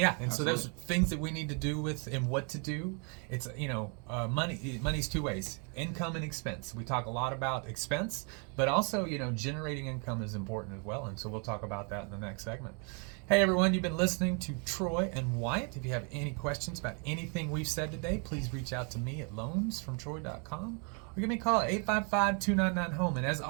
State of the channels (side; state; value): left; quieter; 37.0 dB